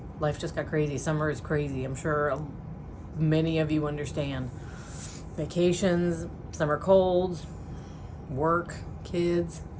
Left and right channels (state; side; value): identical; both; correlation 1.00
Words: life just got crazy. Summer is crazy. I'm sure many of you understand. Vacations, summer colds, work, kids.